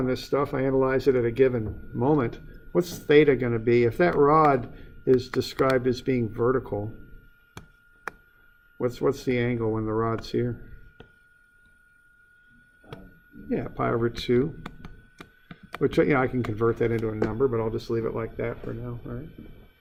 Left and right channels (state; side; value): identical; both; correlation 1.00